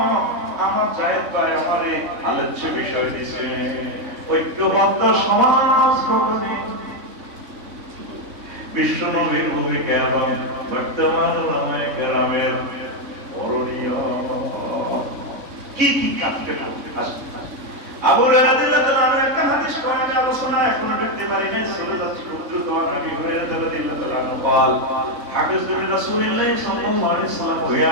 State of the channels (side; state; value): left; late; 3.6 ms